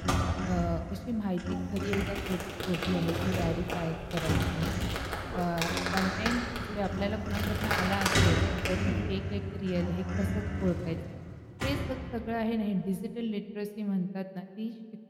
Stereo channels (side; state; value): both; identical; correlation 1.00